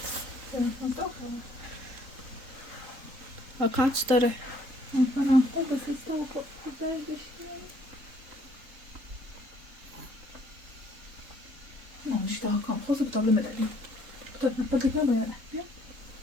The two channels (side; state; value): left; late; 3.8 ms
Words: واکانس داره. Non, je te raconte. Cosa potrebbe me dare? Potrebbe me dare.